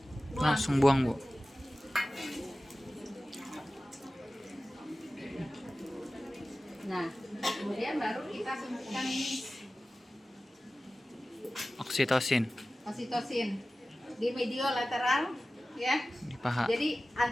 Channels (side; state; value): both; normal; correlation 0.96